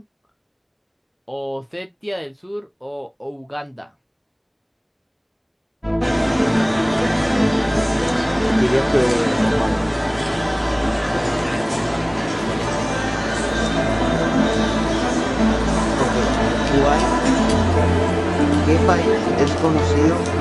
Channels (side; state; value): both; identical; correlation 1.00